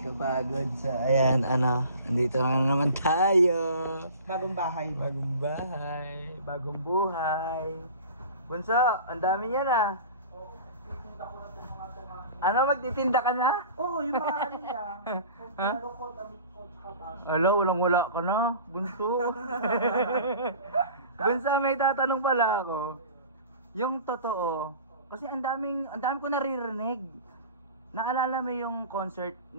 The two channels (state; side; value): inverted; both; correlation -0.41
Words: kapagod. So, ayan, andito na naman tayo. Bagong bahay. Bagong bahay, bagong buhay. Bunso, ang dami niya na. Ano, magtitinda ka na? Oo, yung mga ano niya. Ha? Hello, wala ka na, Bunso. Bunso, may tatanong pala ako. Yung totoo, kasi ang dami ko naririnig. Naalala mo yung concert